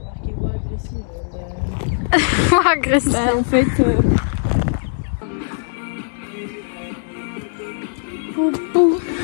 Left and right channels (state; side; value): silent; right; digital silence